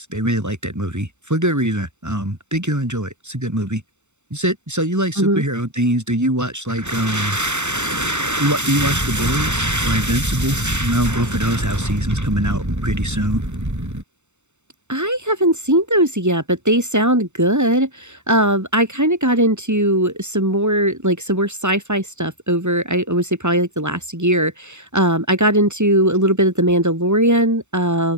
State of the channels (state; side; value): late; left; 0.83 ms